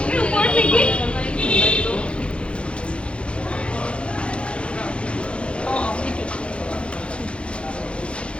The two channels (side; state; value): right; late; 0.059 ms